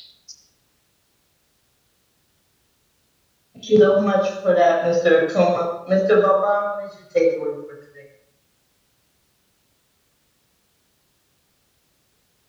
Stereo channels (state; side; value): identical; both; correlation 1.00